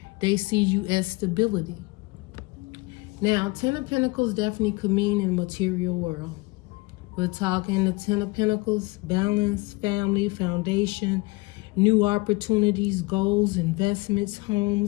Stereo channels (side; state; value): right; quieter; 25.0 dB